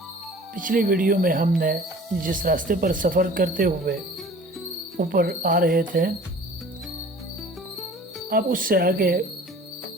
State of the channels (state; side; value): normal; both; correlation 0.46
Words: پچھلی ویڈیو میں ہم نے جس راستے پر سفر کرتے ہوئے اوپر آ رہے تھے، اب اس سے آگے